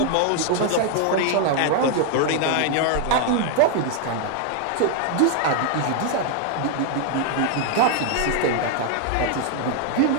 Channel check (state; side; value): different; both; correlation 0.00